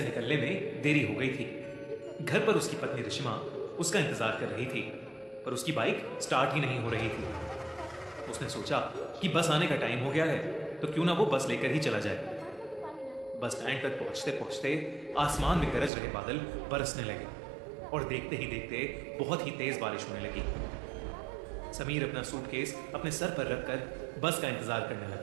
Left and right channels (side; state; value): left; drops out; at 15.9 s